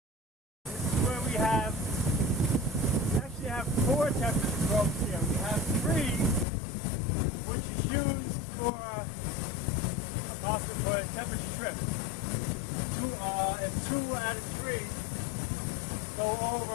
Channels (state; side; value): drops out; right; at 6.5 s